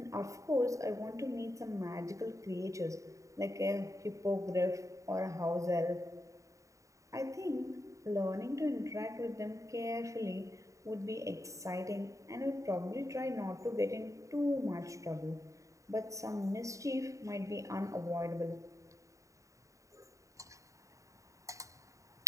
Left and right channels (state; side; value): late; left; 0.16 ms